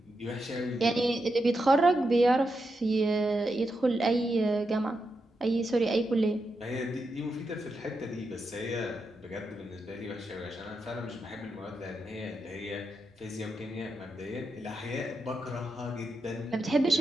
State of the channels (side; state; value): both; normal; correlation 0.85